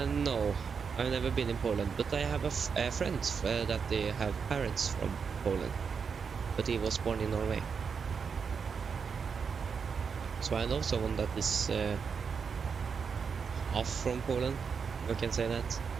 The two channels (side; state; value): left; quieter; 6.0 dB